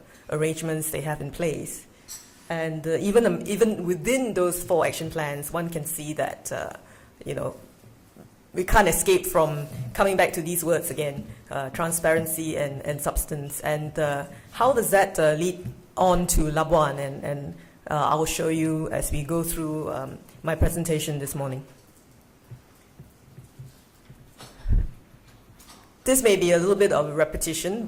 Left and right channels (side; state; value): both; identical; correlation 1.00